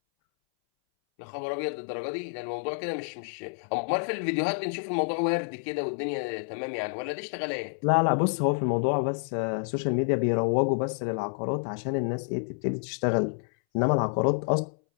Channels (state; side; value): silent; right; 59 dB below the other